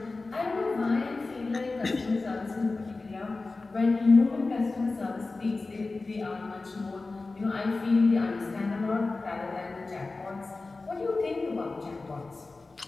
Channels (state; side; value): quieter; right; 3.6 dB